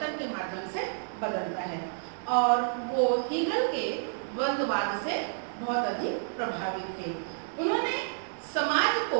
के माध्यम से बदलता है। और वो हीगल के द्वंद्ववाद से बहुत अधिक प्रभावित थे। उन्होंने समाज को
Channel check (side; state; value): left; silent; digital silence